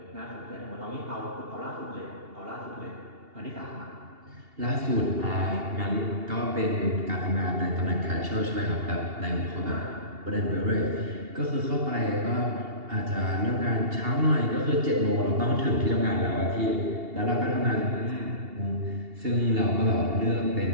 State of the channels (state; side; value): late; left; 2.8 ms